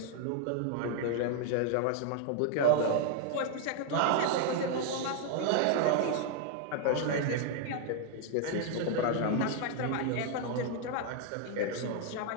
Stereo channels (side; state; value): both; different; correlation 0.00